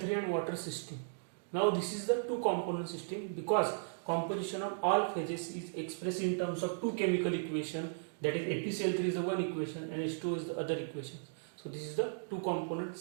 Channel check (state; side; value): silent; left; digital silence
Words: and water system. Now this is the two component system because composition of all phases is expressed in terms of two chemical equation, that is FeCl3 is the one equation and H2O is the other equation. So this is the two component